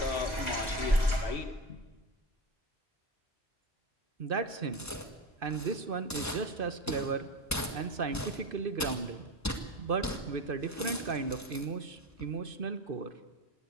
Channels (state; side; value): normal; both; correlation 0.24